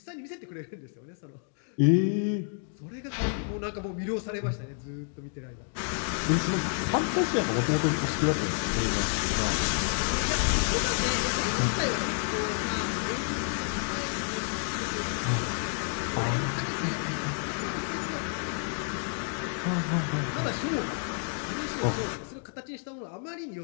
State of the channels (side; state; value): right; silent; 58 dB below the other